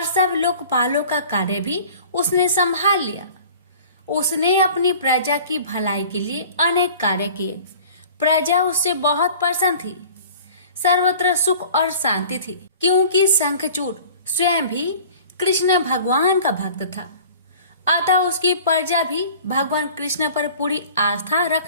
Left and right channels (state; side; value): inverted; both; correlation -0.45